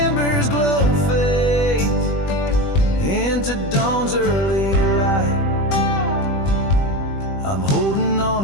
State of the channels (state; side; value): late; right; 21 ms